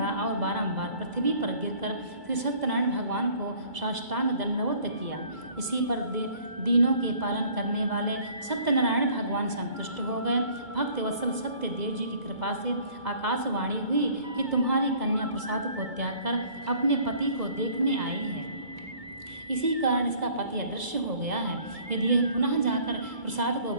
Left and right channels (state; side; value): late; left; 2.3 ms